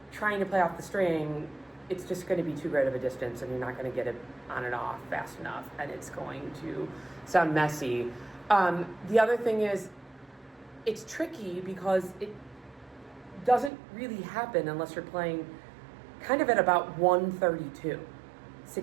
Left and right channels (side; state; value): left; drops out; at 13.7 s